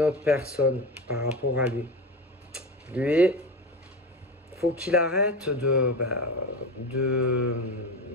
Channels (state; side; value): normal; both; correlation 0.24